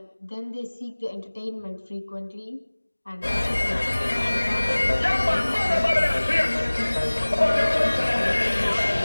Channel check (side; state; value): both; inverted; correlation -1.00